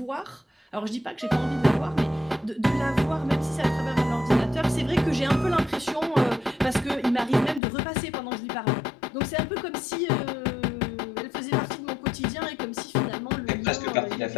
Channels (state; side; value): drops out; right; at 7.6 s